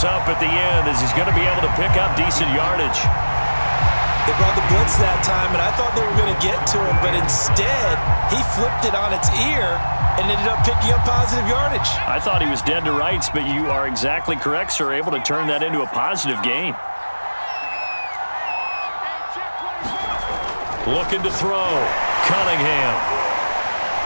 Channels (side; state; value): both; inverted; correlation -1.00